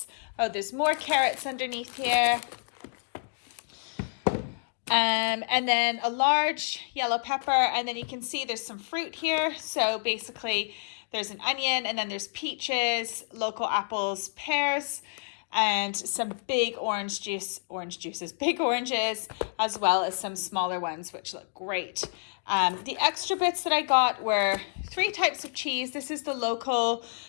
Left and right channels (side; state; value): right; silent; digital silence